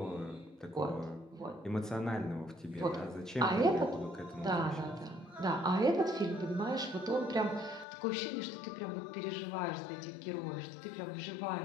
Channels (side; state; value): right; drops out; at 7.9 s